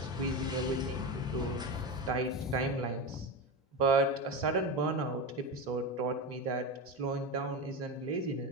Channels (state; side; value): normal; both; correlation 0.19